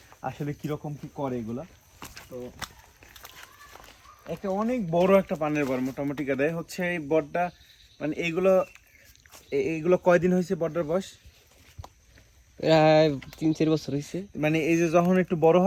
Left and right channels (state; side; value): identical; both; correlation 1.00